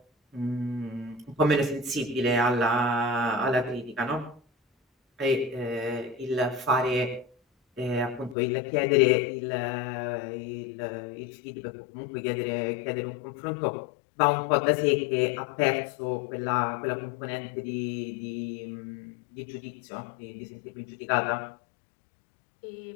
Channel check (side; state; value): right; drops out; at 8.3 s